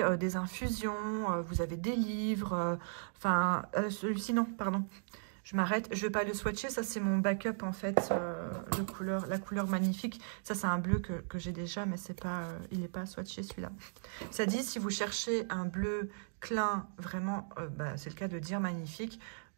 des infusions, vous avez des livres, celui-ci non, pardon, je m'arrête, je vais pas le swatcher, ça c'est mon backup en fait, la couleur magnifique, ça c'est un bleu que j'ai déjà, mais c'est pas, il n'est pas swatché celui-là. Ça dit, si vous cherchez un bleu clin, vraiment, c'est le cas de dire magnifique,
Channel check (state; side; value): silent; left; digital silence